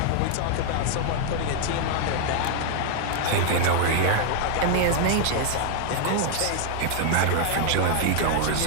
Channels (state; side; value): different; both; correlation 0.00